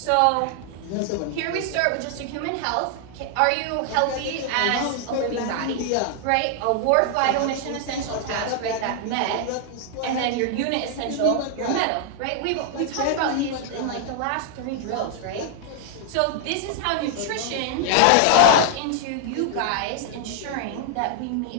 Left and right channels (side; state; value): both; different; correlation 0.00